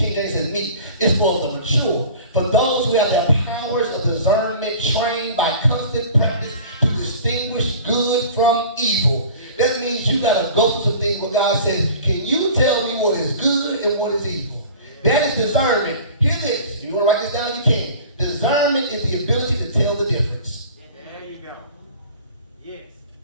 James says meat. It's for the mature. For those who have their powers of discernment trained by constant practice to distinguish good from evil. That means you got to go through some things where God says, can you tell me what is good and what is evil? That is discernment. Hear this. If you want to write this down, you can. Discernment is the ability to tell the difference. There you go. Yes.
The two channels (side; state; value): both; inverted; correlation -0.42